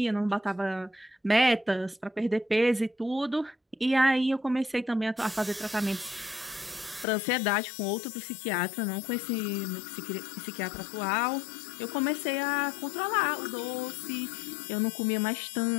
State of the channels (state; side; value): drops out; right; at 7.1 s